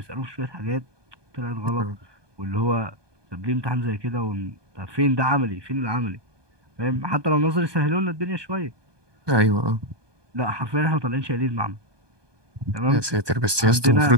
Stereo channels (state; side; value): late; left; 1.2 ms